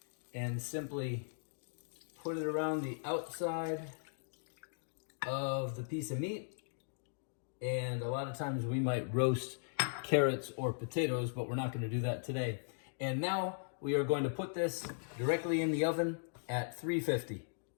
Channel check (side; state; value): right; silent; digital silence